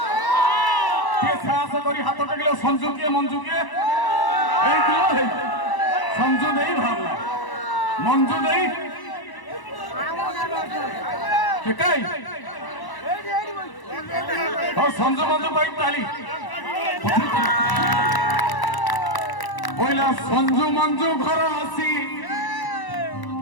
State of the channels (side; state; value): right; late; 1.0 ms